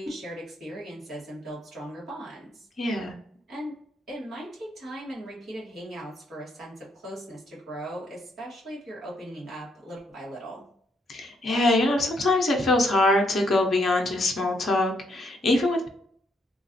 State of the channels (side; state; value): both; normal; correlation 0.74